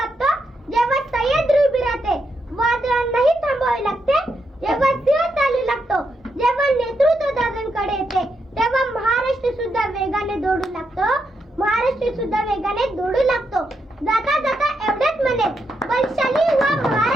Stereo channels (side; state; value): both; normal; correlation 0.82